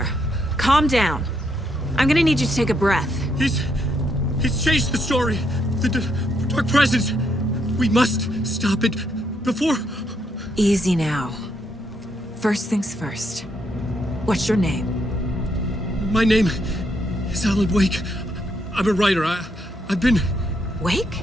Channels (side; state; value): both; normal; correlation 0.76